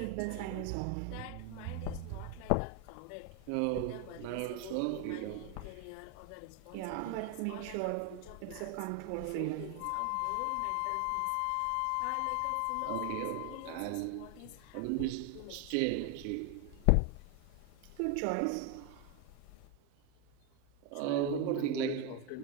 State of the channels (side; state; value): both; different; correlation 0.01